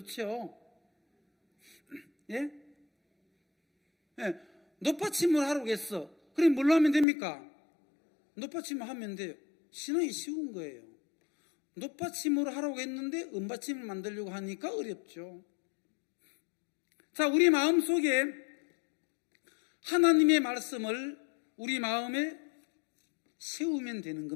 예? 예. 놋받침을 하라고 했어. 그럼 뭘로 하면 됩니까? 놋받침을 하면 돼요. 신앙이 쉬운 거예요. 놋받침으로 하라고 했는데 은받침을 만들려고 하니까 어렵죠. 자, 우리 마음속에 하나님의 말씀을 우리 마음에 세우면 되는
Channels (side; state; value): right; drops out; at 7.1 s